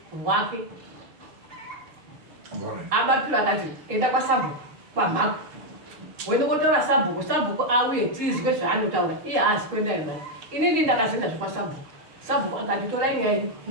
rwake. Abapiro akati, enda kwaSabhuku, kwamhako. Wende kotaura Sabhuku, Sabhuku auye tizwe zvaanotaura, iye haazi kuenda imani. Inini ndakazoenda zvekwaSabhuku. Sabhuku akati, torai nyaya yenyu,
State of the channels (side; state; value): left; late; 6.6 ms